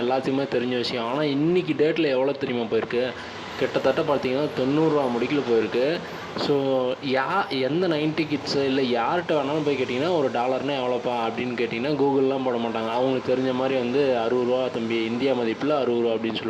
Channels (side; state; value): both; identical; correlation 1.00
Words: எல்லாத்துக்குமே தெரிஞ்ச விஷயம். ஆனால் இன்றைக்கி டேட்டில் எவ்வளோ தெரியுமா போயிருக்கு, கிட்டத்தட்ட பார்த்தீங்கன்னா 90 ரூபா முடிக்கல போயிருக்கு. ஸோ எந்த 90 கிட்ஸு இல்லை யார்கிட்ட வேணாலும் போய் கேட்டிங்கன்னா ஒரு டாலர்னால் எவ்வளோப்பா அப்படின்னு கேட்டிங்கன்னா கூகுள்லாம் போட மாட்டாங்க. அவங்களுக்கு தெரிஞ்ச மாதிரி வந்து 60 ரூபா தம்பி, இந்தியா மதிப்பில் 60 ரூபா அப்படின்னு